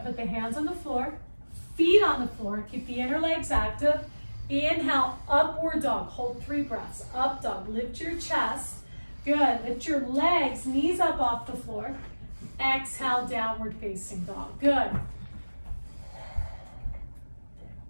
put the hands on the floor, feet on the floor, keep the inner legs active. Inhale, upward dog, hold 3 breaths. Up dog, lift your chest. Good, lift your legs, knees up off the floor. Exhale, downward facing dog. Good.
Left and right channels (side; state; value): both; inverted; correlation -1.00